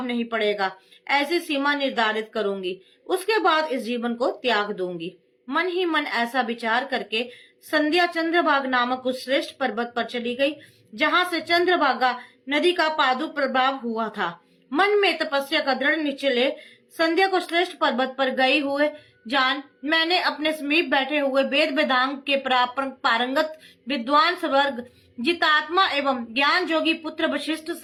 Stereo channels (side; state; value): both; identical; correlation 1.00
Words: नहीं पड़ेगा, ऐसी सीमा निर्धारित करूंगी। उसके बाद इस जीवन को त्याग दूंगी। मन ही मन ऐसा विचार करके संध्या चंद्रभागा नामक उस श्रेष्ठ पर्वत पर चली गई, जहाँ से चंद्रभागा नदी का पादु प्रभाव हुआ था। मन में तपस्या का दृढ़ निश्चय ले संध्या को श्रेष्ठ पर्वत पर गई हुए जान मैंने अपने समीप बैठे हुए वेद वेदांग के पारंगत विद्वान स्वर्ग जितात्मा एवं ज्ञान जोगी पुत्र वशिष्ठ